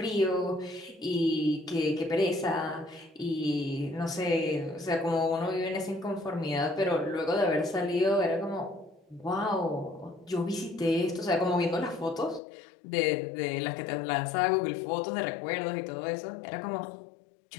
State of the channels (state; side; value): drops out; right; at 12.4 s